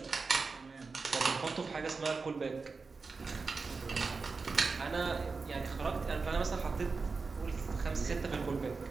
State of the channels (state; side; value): quieter; left; 4.4 dB